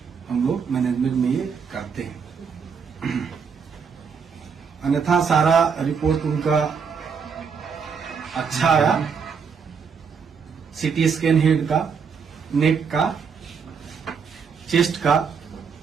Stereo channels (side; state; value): left; quieter; 6.1 dB